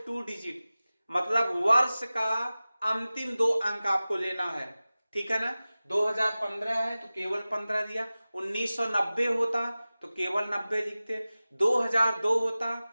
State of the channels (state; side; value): inverted; both; correlation -0.97